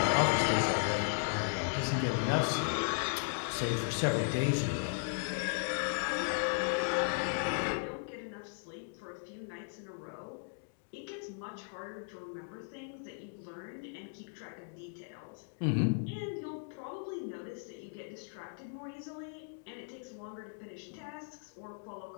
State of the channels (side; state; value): right; silent; digital silence